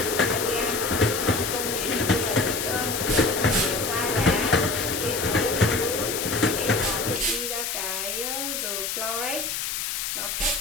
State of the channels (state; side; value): noise; left; hiss, 2 dB below the sound